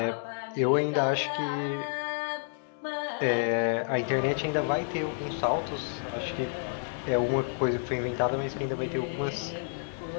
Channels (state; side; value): silent; right; digital silence